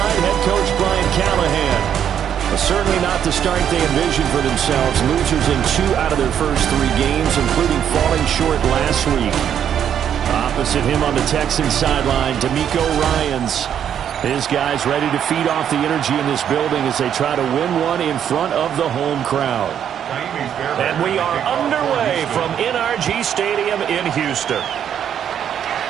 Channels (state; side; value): quieter; left; 9.1 dB